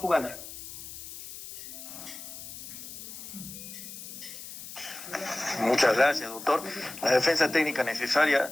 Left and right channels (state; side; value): noise; left; hiss, 12 dB below the sound